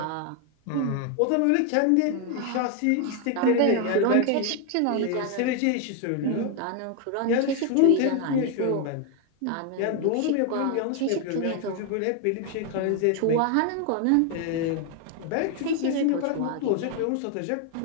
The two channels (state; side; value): different; both; correlation 0.01